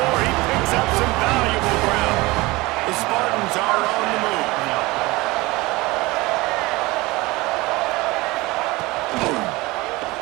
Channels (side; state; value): left; quieter; 21.6 dB